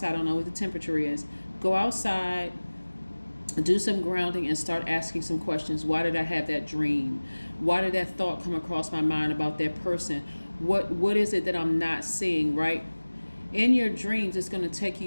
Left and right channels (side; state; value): both; inverted; correlation -1.00